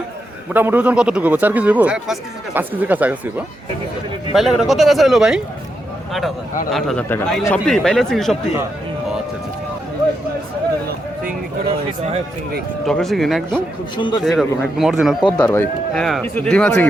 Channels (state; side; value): normal; both; correlation 0.83